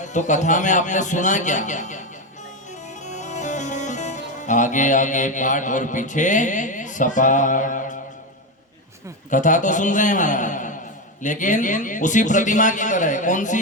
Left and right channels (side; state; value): both; normal; correlation 0.12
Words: तो कथा में आपने सुना क्या? आगे आगे पाठ और पीछे सपाट। कथा तो सुन रहे हैं महाराज, लेकिन उसी प्रतिमा की तरह। कौन